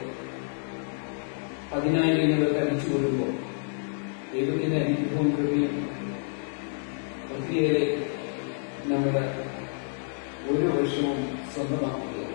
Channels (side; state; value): right; silent; digital silence